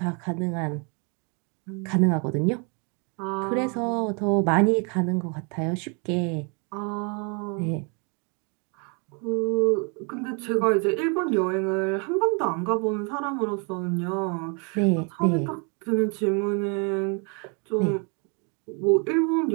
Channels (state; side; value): quieter; left; 35.2 dB